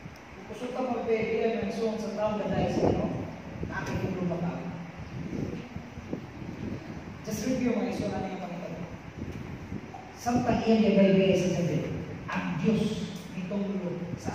Kusok ka magpapilihan ng suwang sa taong dahil sa inyo, nakakitulong ba ka? Just review mga iso na yung Panginoon. Samtang iyan yung baybay sa David, ang Diyos nitong ulo sa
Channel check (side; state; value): both; identical; correlation 1.00